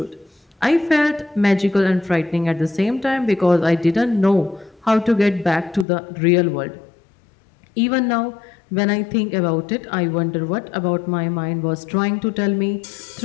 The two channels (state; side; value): drops out; right; at 5.9 s